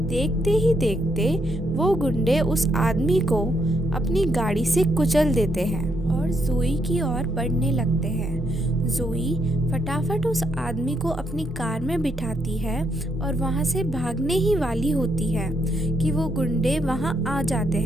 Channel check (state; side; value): normal; both; correlation 0.76